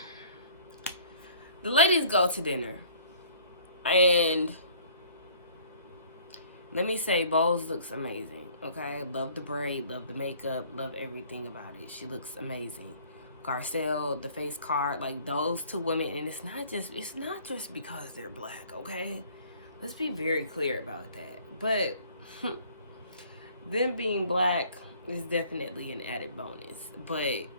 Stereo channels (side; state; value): both; inverted; correlation -0.54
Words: The ladies go to dinner. And let me say, Bowles looks amazing, okay? Love the braid, love the makeup, love everything about it. She looks amazing. Garcelle, the face card, like those two women, and it's not just because they're black, okay? Let's be very clear about that. But them being black is definitely an added bonus. But